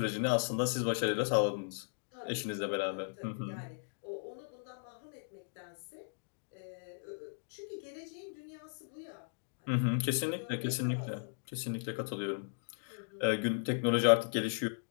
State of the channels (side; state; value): right; silent; digital silence